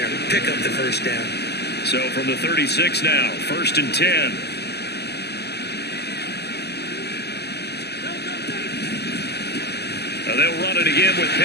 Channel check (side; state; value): right; late; 0.48 ms